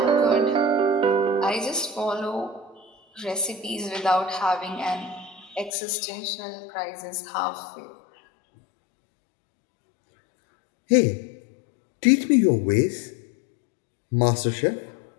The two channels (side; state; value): right; drops out; at 5.7 s